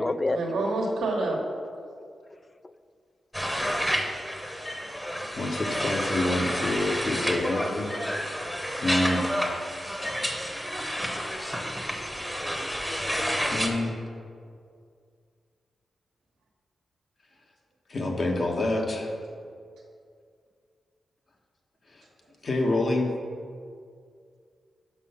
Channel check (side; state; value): both; normal; correlation 0.91